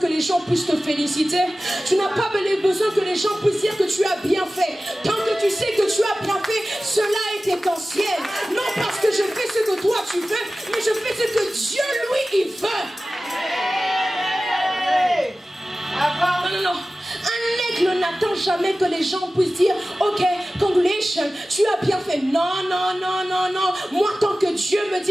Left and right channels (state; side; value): normal; both; correlation 0.96